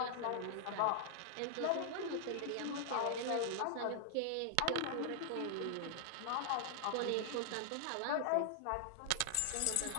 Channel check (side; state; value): both; different; correlation -0.01